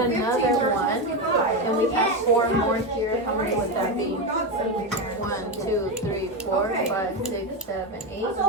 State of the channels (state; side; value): normal; both; correlation 0.13